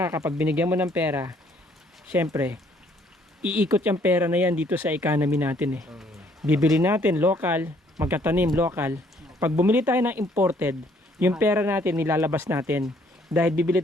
kapag binigyan mo ng pera, syempre, iikot yung pera na yan dito sa economy natin eh. Bibili natin local, magtatanim local. Pag bumili tayo ng imported, yung pera natin nilalabas natin dahil bibili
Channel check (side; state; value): both; normal; correlation 0.64